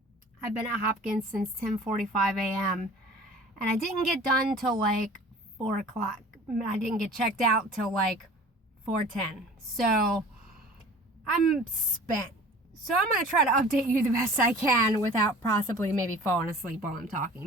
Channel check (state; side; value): normal; both; correlation 0.44